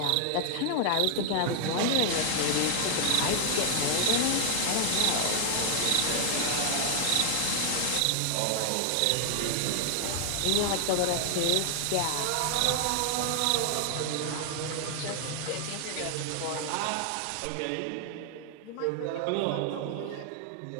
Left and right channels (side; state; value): both; different; correlation 0.00